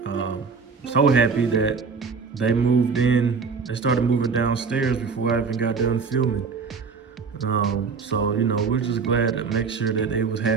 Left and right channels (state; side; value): quieter; left; 5.2 dB